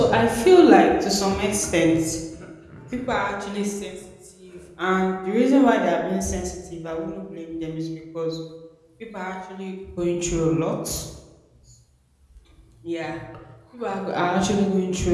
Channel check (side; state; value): both; identical; correlation 1.00